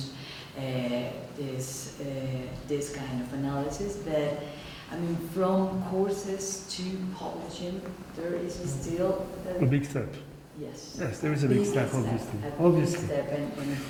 this kind of analysis. But I mean, from courses to publishing, there is still a big step. Yes. Yes, there is a big step, obviously. Obviously.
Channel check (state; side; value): identical; both; correlation 1.00